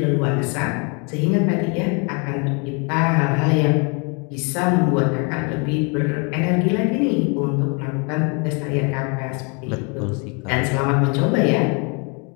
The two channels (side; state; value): right; quieter; 33.2 dB